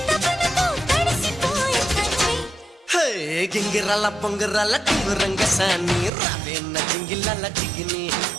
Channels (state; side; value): drops out; left; at 6.1 s